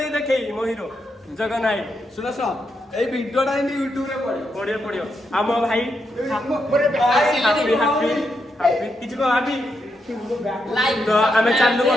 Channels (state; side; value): normal; both; correlation 0.82